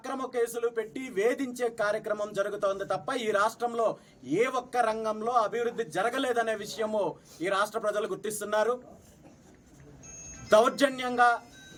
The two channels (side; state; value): both; identical; correlation 1.00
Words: కేసులు పెట్టి వేధించే కార్యక్రమం జరుగుతోంది తప్ప ఈ రాష్ట్రంలో ఏ ఒక్క రంగంలో అభివృద్ధి జరగలేదనే విషయము ఈ రాష్ట్ర ప్రజలు గుర్తిస్తున్నారు. దౌర్జన్యంగా